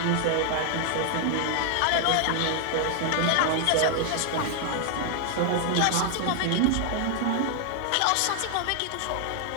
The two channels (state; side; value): different; both; correlation 0.00